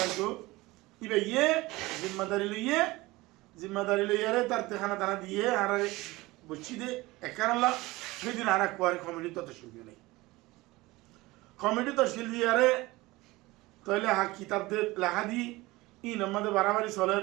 ইবে ইয়ে জিম্মাদারি লইয়ারে তার তেখানা দানা দিয়ে আর বুঝছি দে একারলা সেদিন আর কোয়ারে কমিটি তো তশকিল নেই কমিটি তশকিল দিয়ারে তাহলে কিতাব দে লেখা দি ই নম্বরে বাড়াবাড়ি চলের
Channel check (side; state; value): left; quieter; 20.6 dB